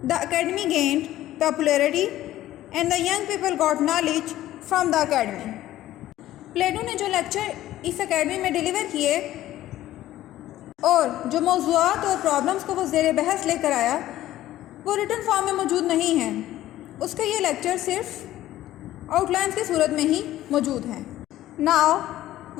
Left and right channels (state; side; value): quieter; right; 14.2 dB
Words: the academy gained popularity and the young people got knowledge from the academy. प्लेटो ने जो lecture इस academy में deliver किए और जो मौज़ूआत और problems को वो ज़ेर बहस लेकर आया वो रिटन फॉर्म में मौजूद नहीं हैं। उसके ये लेक्चर सिर्फ आउटलाइंस की सूरत में ही मौजूद हैं। Now